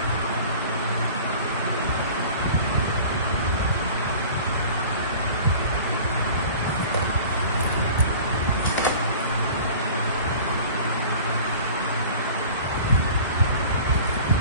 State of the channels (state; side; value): inverted; both; correlation -0.43